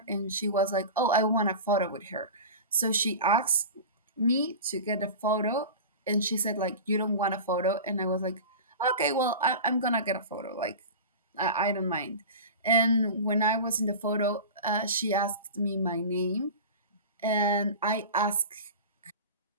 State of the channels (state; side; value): inverted; both; correlation -0.31